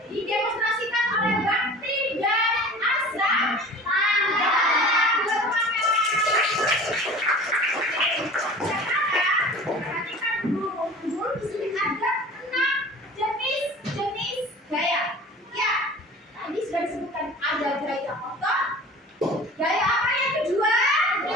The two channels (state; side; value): normal; both; correlation 0.41